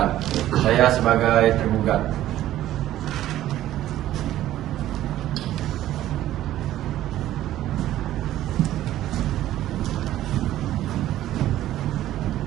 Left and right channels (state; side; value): quieter; left; 13.5 dB